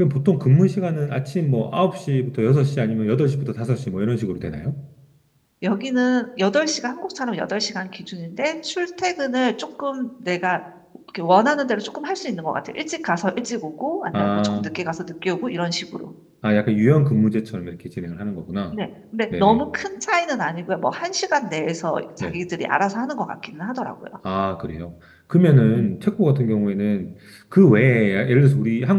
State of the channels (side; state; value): both; identical; correlation 1.00